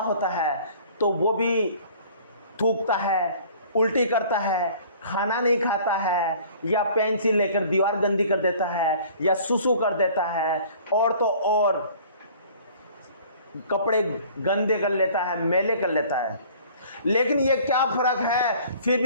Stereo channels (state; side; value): inverted; both; correlation -0.50